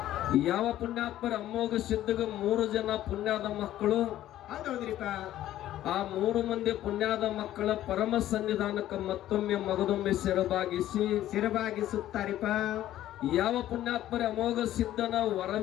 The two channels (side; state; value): right; quieter; 13.2 dB